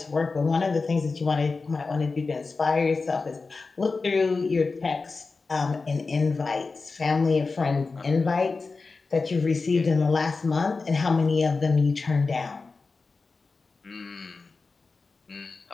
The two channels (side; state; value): right; quieter; 4.1 dB